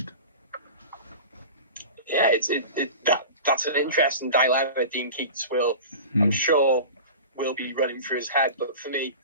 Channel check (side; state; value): both; inverted; correlation -0.34